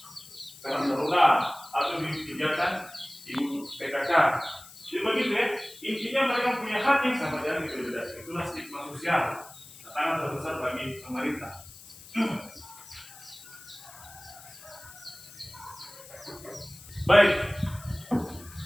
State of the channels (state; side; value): noise; left; hiss, 18 dB below the sound